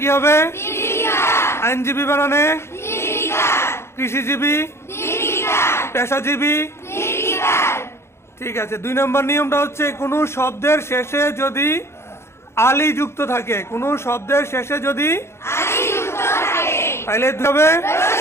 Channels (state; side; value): late; right; 0.13 ms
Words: কি হবে? আইনজীবী বানানে, কৃষিজীবী, পেশাজীবী। ঠিক আছে, 2 নম্বর নিয়মটা হচ্ছে কোন শব্দের শেষে যদি আলি যুক্ত থাকে, কোন শব্দের শেষে যদি তাহলে হবে,